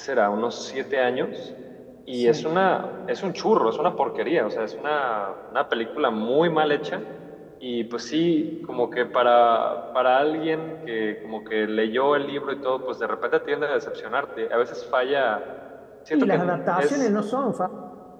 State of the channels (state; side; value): identical; both; correlation 1.00